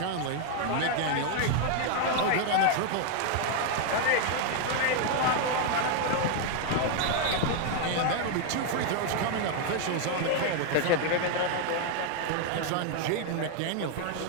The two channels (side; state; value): both; different; correlation 0.01